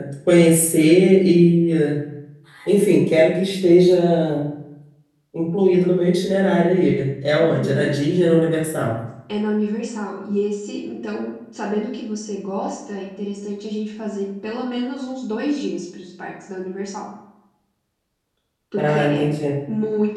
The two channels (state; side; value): identical; both; correlation 1.00